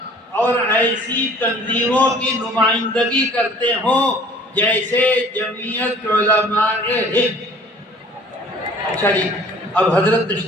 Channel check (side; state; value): both; normal; correlation 0.51